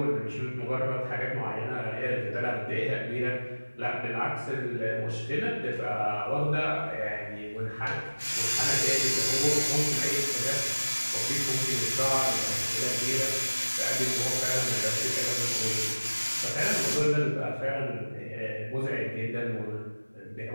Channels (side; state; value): both; inverted; correlation -1.00